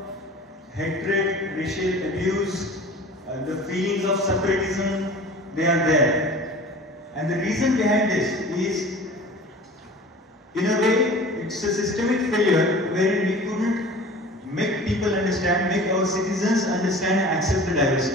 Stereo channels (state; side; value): normal; both; correlation 0.41